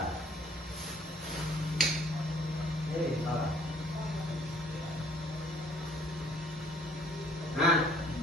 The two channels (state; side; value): normal; both; correlation 0.59